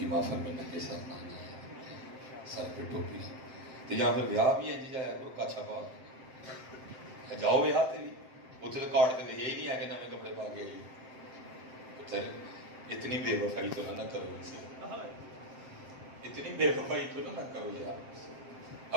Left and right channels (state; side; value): late; left; 7.6 ms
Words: محفل میں ننگے سر نہ آنا ہے، سر پہ ٹوپی تو یہاں پھر ویاہ بھی ہے جی، جایا کرو کاچھا پا جاؤ ویاہ تے بھی، اتنے تو کارڈ تے لکھے ہی نہیں ہے کہ نئے کپڑے پا کے آئیے۔ اتنی بے وفائی تو نہ کرو ان سے، اتنی بے وفائی تو نہ کرو یار۔